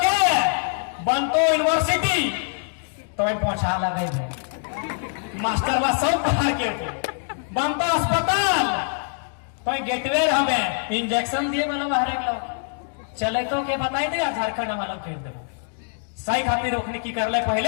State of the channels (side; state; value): right; silent; digital silence